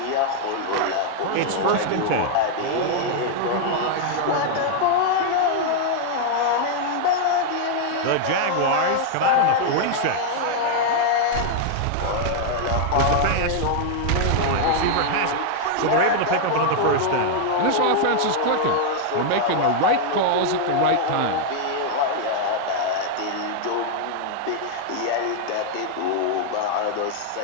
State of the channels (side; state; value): both; different; correlation -0.01